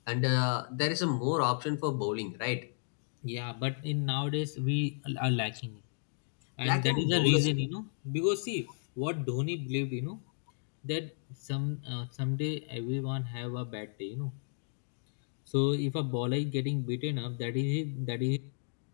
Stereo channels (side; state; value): right; silent; digital silence